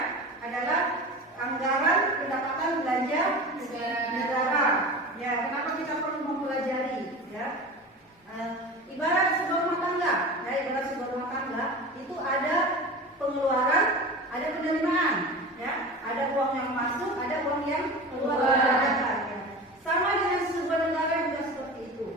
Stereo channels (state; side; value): normal; both; correlation 0.32